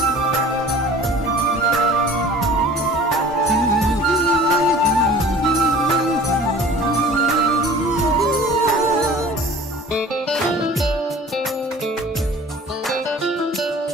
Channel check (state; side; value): normal; both; correlation 0.45